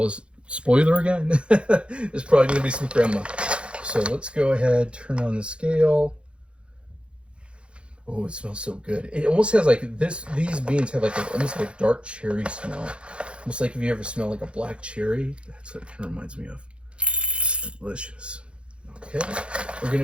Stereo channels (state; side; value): late; left; 0.058 ms